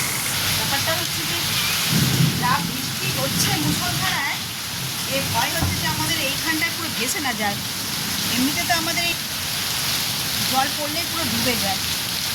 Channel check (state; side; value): identical; both; correlation 1.00